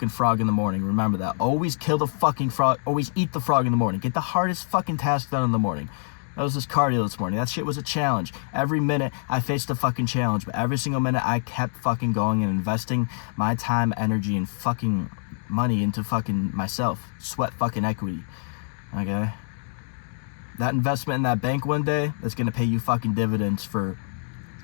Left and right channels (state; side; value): silent; right; digital silence